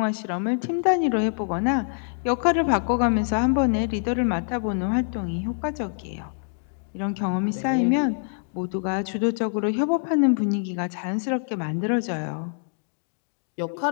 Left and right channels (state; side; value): silent; right; digital silence